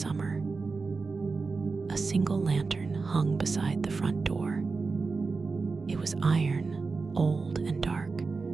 A single lantern hung beside the front door. It was iron, old and dark,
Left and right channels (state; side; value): quieter; left; 4.3 dB